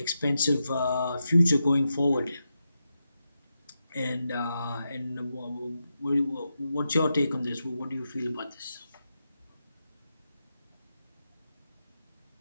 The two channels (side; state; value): both; inverted; correlation -0.88